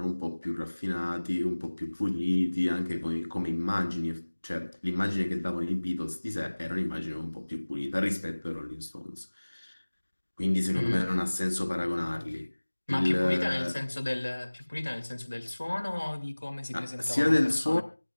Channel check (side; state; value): both; inverted; correlation -1.00